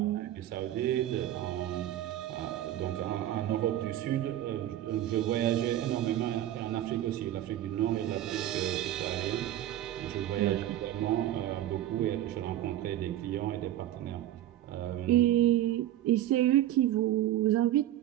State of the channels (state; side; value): quieter; left; 12.9 dB